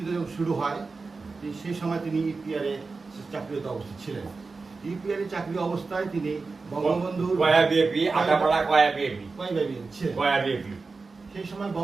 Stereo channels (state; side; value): quieter; left; 4.1 dB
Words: যখন শুরু হয়, সেই সময় তিনি ইপিআরে চাকরিরত অবস্থায় ছিলেন। ইপিআরে চাকরি অবস্থায় তিনি বঙ্গবন্ধুর সেই সময়